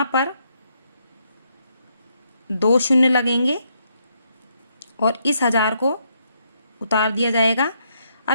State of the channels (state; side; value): inverted; both; correlation -0.76